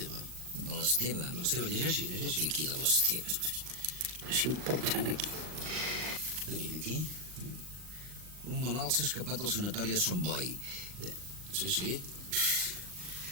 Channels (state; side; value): late; left; 39 ms